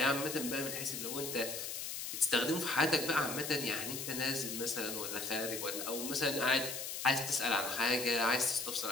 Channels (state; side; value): noise; left; hiss, 5 dB below the sound